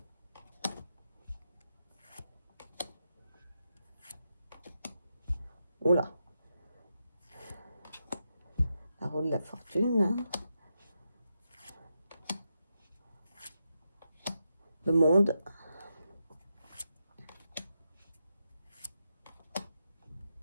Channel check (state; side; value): inverted; both; correlation -0.86